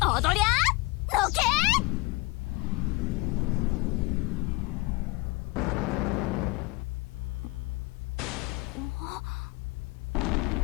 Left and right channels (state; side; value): quieter; right; 23.8 dB